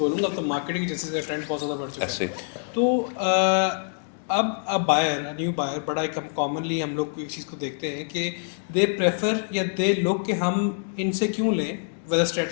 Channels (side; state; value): right; silent; digital silence